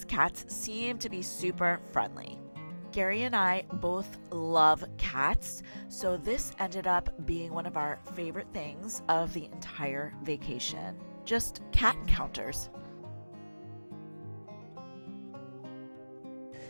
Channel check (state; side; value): inverted; both; correlation -1.00